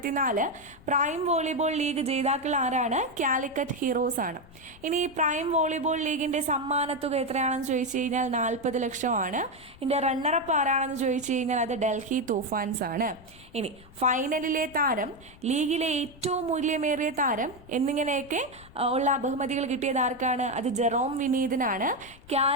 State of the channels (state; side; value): noise; left; rumble, 22 dB below the sound